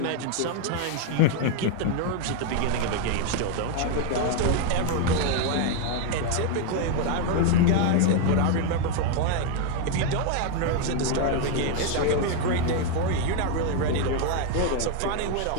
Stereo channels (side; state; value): both; different; correlation 0.01